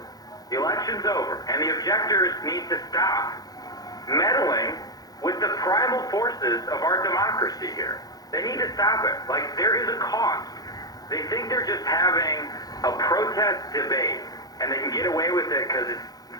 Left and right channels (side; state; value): right; late; 0.18 ms